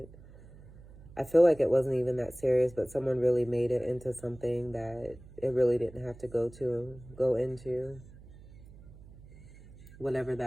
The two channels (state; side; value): noise; right; hum, 20 dB below the sound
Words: I feel like it wasn't even that serious, but someone really made it into something that it really didn't have to go into. Whatever